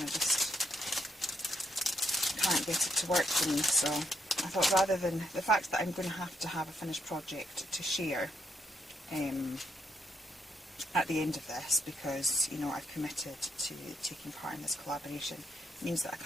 just can't get it to work for me. So I thought, rather than the fact that I'm going to have a finished project to share at the end of this, because you know I've committed to taking part in this collaboration, it means that I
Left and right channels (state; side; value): normal; both; correlation 0.77